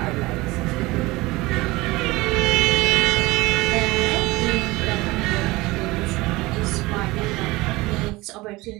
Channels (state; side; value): quieter; left; 20.9 dB